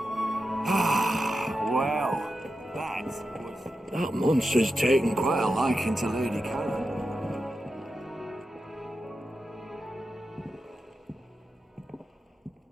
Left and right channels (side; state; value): both; normal; correlation 0.90